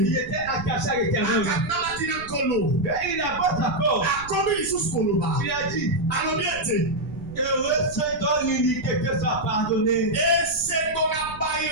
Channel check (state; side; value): noise; right; rumble, 16 dB below the sound